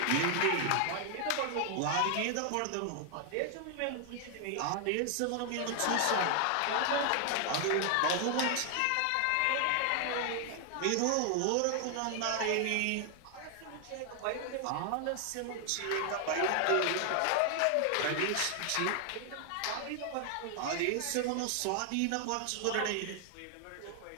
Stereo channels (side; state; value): both; different; correlation 0.00